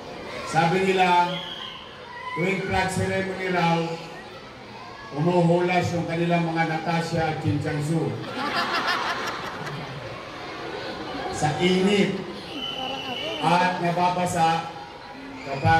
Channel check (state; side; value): identical; both; correlation 1.00